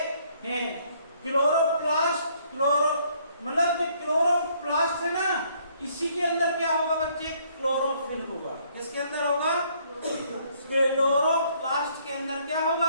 हैं। क्लोरोप्लास्ट मतलब जो क्लोरोप्लास्ट है ना, इसी के अंदर क्या होगा बच्चे? क्लोरोफिल होगा। किसके अंदर होगा? क्लोरोप्लास्ट के अंदर क्या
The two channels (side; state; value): both; inverted; correlation -0.65